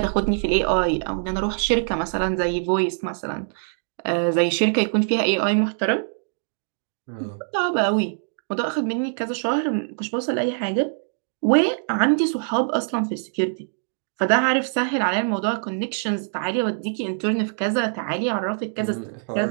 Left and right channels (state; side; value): silent; left; digital silence